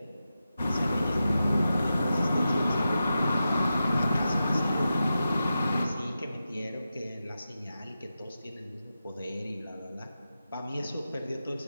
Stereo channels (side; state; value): both; inverted; correlation -0.91